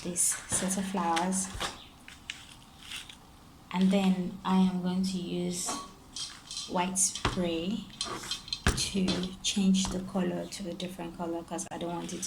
this set of flowers, and then I am going to use white spray to change the color to a different color because I don't want it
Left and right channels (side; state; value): both; identical; correlation 1.00